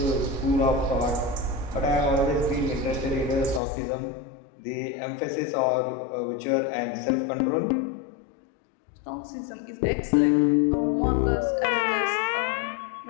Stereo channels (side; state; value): right; drops out; at 3.6 s